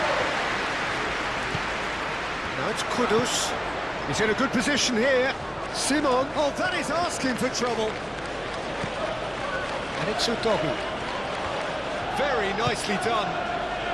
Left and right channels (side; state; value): both; identical; correlation 1.00